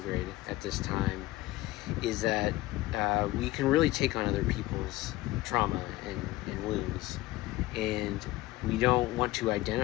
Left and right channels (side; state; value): right; quieter; 17.5 dB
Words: at this time, is that we can really take on other people's trauma and wounds, and we don't want to